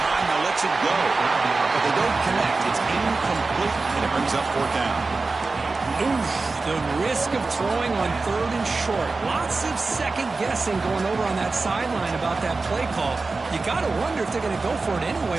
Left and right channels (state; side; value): quieter; left; 3.8 dB